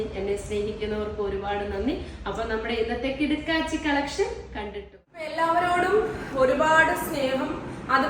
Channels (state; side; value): identical; both; correlation 1.00